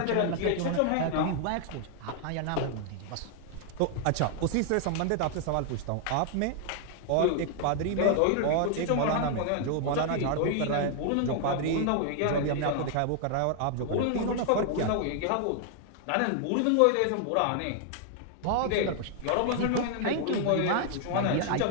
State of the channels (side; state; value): both; different; correlation 0.00